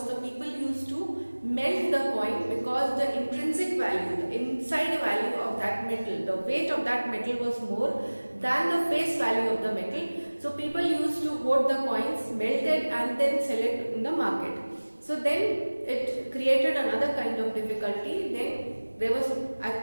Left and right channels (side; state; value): both; inverted; correlation -1.00